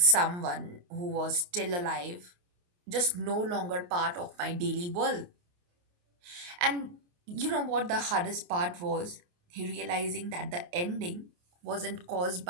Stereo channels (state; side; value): late; left; 28 ms